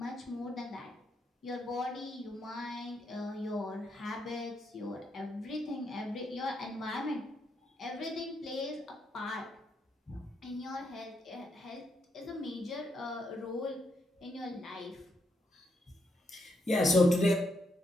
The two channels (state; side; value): normal; both; correlation 0.79